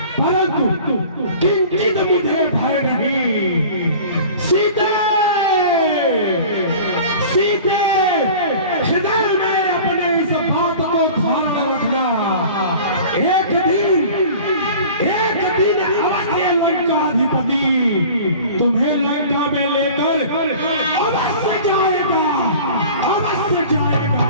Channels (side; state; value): both; inverted; correlation -0.42